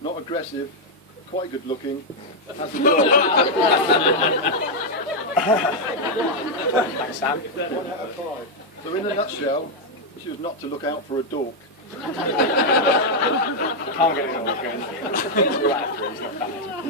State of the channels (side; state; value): both; normal; correlation -0.01